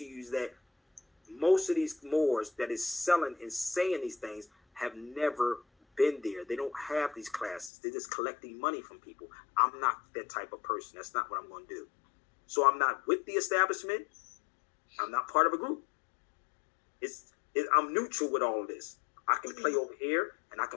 you is that most of these Moors that is selling and saying these things have never been there. They don't have these classes. They're just collecting money from people. I'm not that type of person. That's not what I'm going to do. So I'm not with the establishment. I'm not part of a group. I'm neutral with all of this. I can play over here and I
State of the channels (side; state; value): right; drops out; at 7.7 s